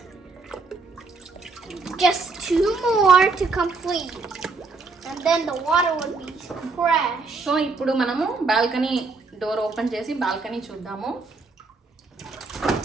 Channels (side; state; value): left; quieter; 4.0 dB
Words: Just 2 more to complete. And then the water will be fresh. So ఇప్పుడు మనము balcony door open చేసి balcony చూద్దాము.